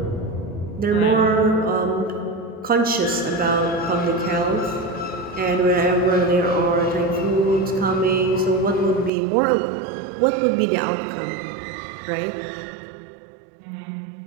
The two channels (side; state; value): left; drops out; at 9.1 s